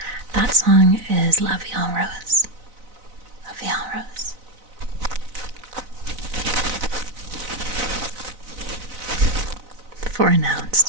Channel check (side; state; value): left; late; 4.0 ms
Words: That song is La Vie en Rose. La Vie en Rose. Four nouns: